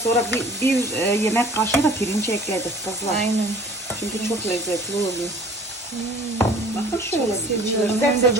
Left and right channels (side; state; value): both; normal; correlation 0.48